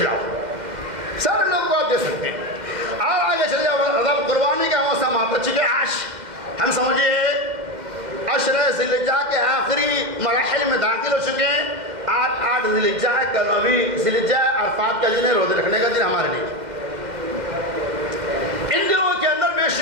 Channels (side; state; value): left; late; 2.1 ms